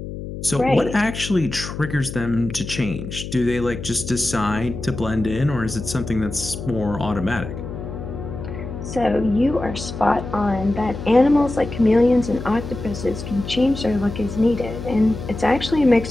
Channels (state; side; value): noise; left; hum, 9 dB below the sound